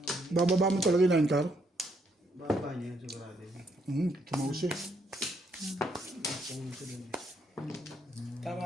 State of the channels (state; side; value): normal; both; correlation 0.73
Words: Bababa mo talaga yung line car. Baba niya, sigurado. Tumaus eh.